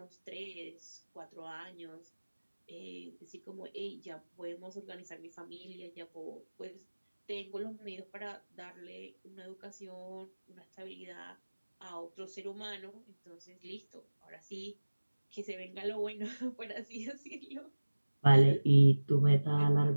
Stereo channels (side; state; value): both; inverted; correlation -1.00